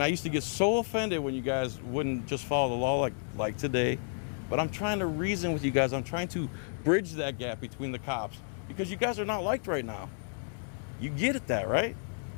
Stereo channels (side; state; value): right; silent; digital silence